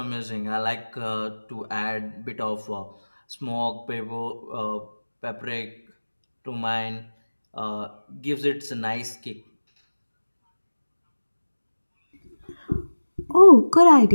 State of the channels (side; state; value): both; inverted; correlation -1.00